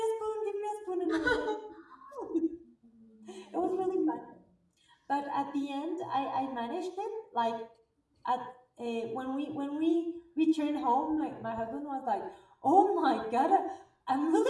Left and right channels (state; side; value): identical; both; correlation 1.00